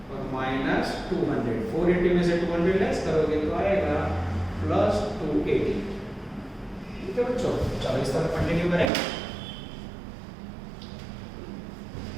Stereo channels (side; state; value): left; drops out; at 8.9 s